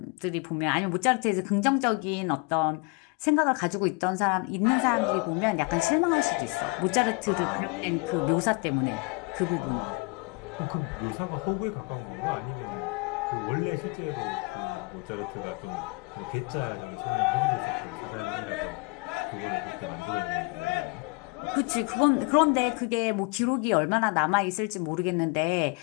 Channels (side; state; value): right; quieter; 29.4 dB